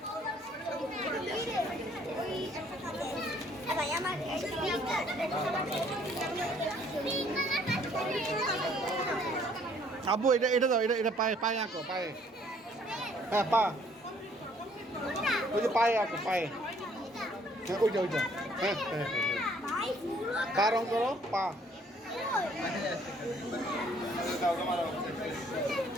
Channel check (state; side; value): normal; both; correlation 0.61